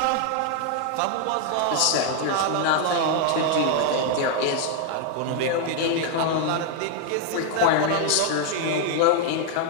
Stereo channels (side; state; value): both; different; correlation 0.00